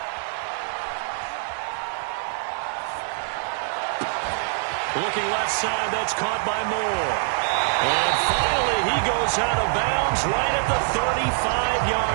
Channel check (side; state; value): left; silent; digital silence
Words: Looking left side, that's caught by Moore. And finally, he goes out of bounds right at the